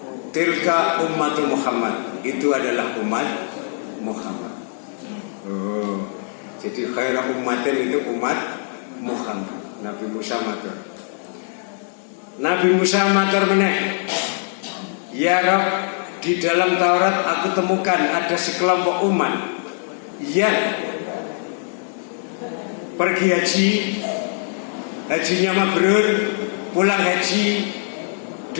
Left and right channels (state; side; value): silent; right; 64 dB below the other